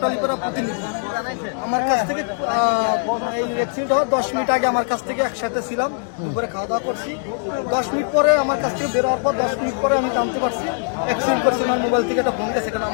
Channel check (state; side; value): silent; right; 65 dB below the other